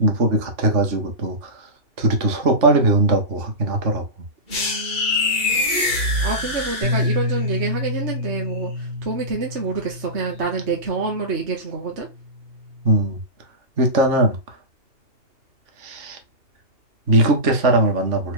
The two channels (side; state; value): left; late; 2.8 ms